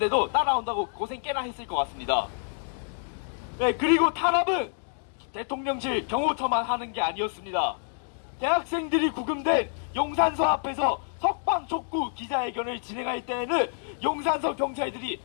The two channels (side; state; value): right; silent; 58 dB below the other